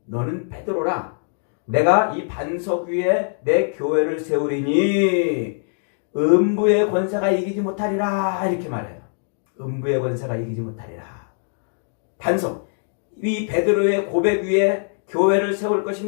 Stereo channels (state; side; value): silent; right; digital silence